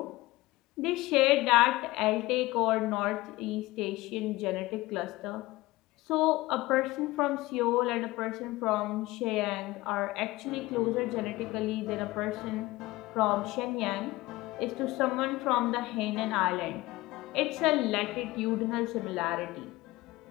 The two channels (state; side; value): quieter; right; 19.4 dB